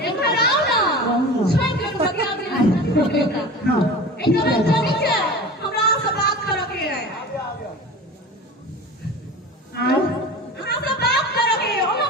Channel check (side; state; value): both; normal; correlation 0.34